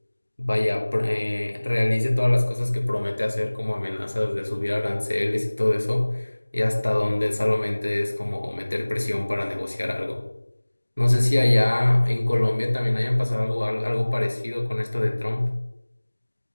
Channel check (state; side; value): inverted; both; correlation -1.00